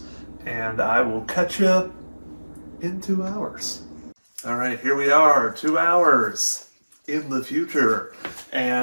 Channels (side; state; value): both; inverted; correlation -1.00